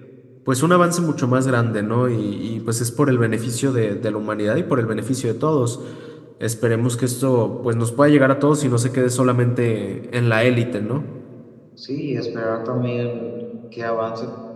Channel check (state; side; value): identical; both; correlation 1.00